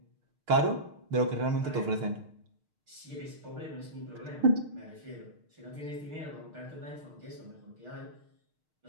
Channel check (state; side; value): late; left; 6.5 ms